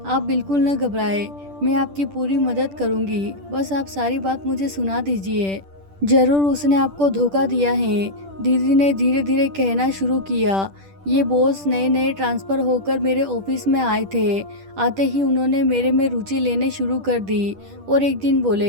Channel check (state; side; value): late; left; 10 ms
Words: आप बिल्कुल न घबराए, मैं आपकी पूरी मदद करूंगी, बस आप सारी बात मुझे सुना दीजिए। जरूर उसने आपको धोखा दिया है, दीदी ने धीरे धीरे कहना शुरू किया। ये बॉस नए नए ट्रांसफ़र होकर मेरे ऑफिस में आए थे। आते ही उन्होंने मेरे में रुचि लेने शुरू कर दी और एक दिन